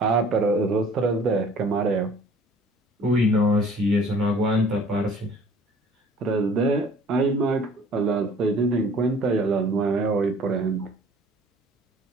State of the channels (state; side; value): normal; both; correlation 0.51